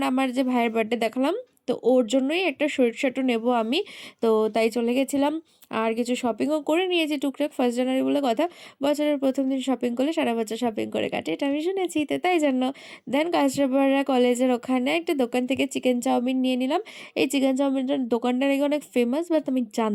আমার যে ভাইয়ের বার্থডে দেখালাম, তো ওর জন্যই একটা শর্ট শার্টও নেবো আমি। তো তাই চলে গেছিলাম, আর কিছু শপিংও করে নিয়েছি টুকটাক। 1st জানুয়ারি বলে কথা, বছরের প্রথম দিন শপিং করলে সারা বছর শপিং করে কাটে, এটা আমি শুনেছি, তো তাই জন্য। দেন কাঁচরাপাড়া কলেজের ওখানে একটা দোকান থেকে চিকেন চাউমিন নিয়ে নিলাম। এই চিকেন চাউমিনটার দোকানটা নাকি অনেক ফেমাস, বাট আমি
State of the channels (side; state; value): both; identical; correlation 1.00